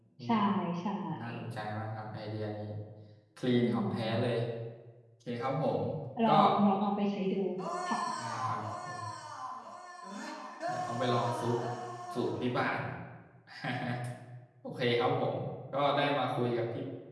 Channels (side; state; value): both; identical; correlation 1.00